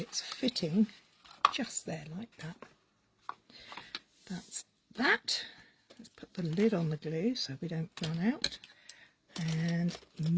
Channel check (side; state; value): both; identical; correlation 1.00